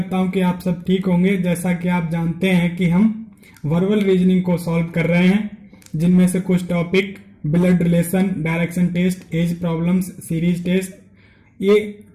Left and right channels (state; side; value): identical; both; correlation 1.00